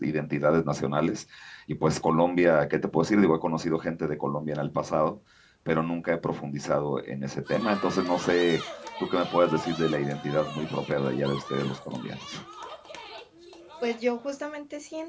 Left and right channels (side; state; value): both; identical; correlation 1.00